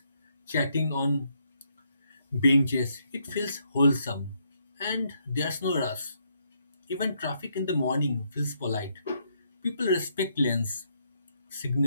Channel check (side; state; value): both; inverted; correlation -0.74